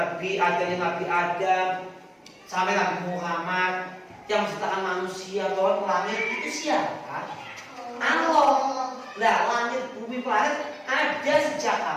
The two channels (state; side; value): identical; both; correlation 1.00